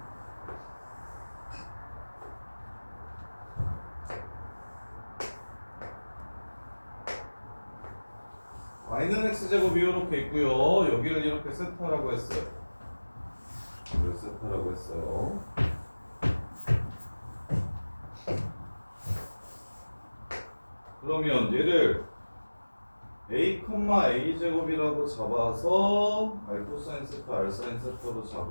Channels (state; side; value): inverted; both; correlation -1.00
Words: y는 x제곱이 이렇게 있고요. 여기를 이렇게 세타라고 했어요. 이걸 세타라고 했어요. 그러면 얘를 a, a제곱이라고 잡아서 r 코사인 세타, r 사인 세타로